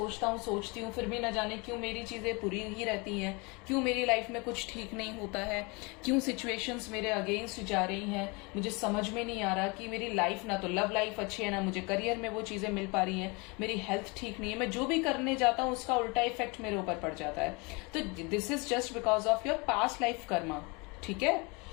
हूँ, सोचती हूँ, फिर भी न जाने क्यों मेरी चीजें बुरी ही रहती हैं, क्यों मेरी लाइफ में कुछ ठीक नहीं होता है, क्यों सिचुएशंस मेरे अगेंस्ट जा रही हैं। मुझे समझ में नहीं आ रहा कि मेरी लाइफ, ना तो लव लाइफ अच्छी है, ना मुझे करियर में वो चीजें मिल पा रही हैं, मेरी हेल्थ ठीक नहीं है, मैं जो भी करने जाता हूँ उसका उल्टा इफेक्ट मेरे ऊपर पड़ जाता है। तो this is just because of your past life Karma. ठीक है,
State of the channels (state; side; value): quieter; right; 28.6 dB